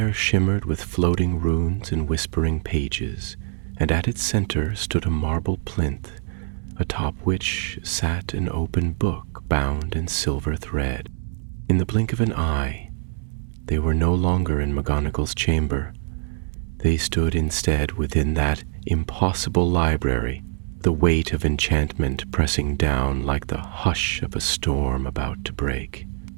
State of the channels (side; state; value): left; silent; 63 dB below the other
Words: shimmered with floating runes and whispering pages, and at its center stood a marble plinth, atop which sat an open book bound in silver thread. In the blink of an eye, they were no longer in McGonagall's chamber. They stood instead within that impossible library, the weight of enchantment pressing down like the hush of a storm about to break.